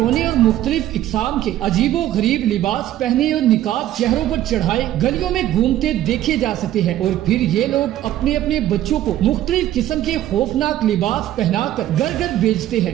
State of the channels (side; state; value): left; quieter; 13.1 dB